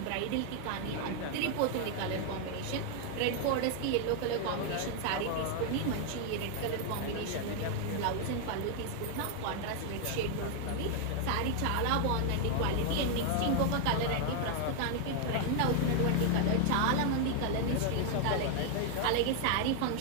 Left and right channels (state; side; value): different; both; correlation 0.00